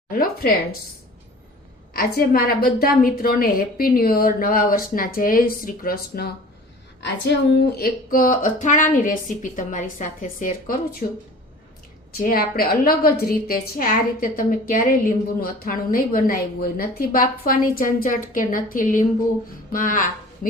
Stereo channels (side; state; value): both; normal; correlation 0.44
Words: Hello friends, આજે મારા બધા મિત્રોને હેપી ન્યૂ યર, નવા વર્ષના જય શ્રી કૃષ્ણ। આજે હું એક અથાણાની રેસીપી તમારી સાથે શેર કરું છું, જે આપણે અલગ જ રીતે છે। આ રીતે તમે ક્યારેય લીંબુનું અથાણું નહીં બનાવ્યું હોય, નથી બાફવાની ઝંઝટ કે નથી લીંબુમાં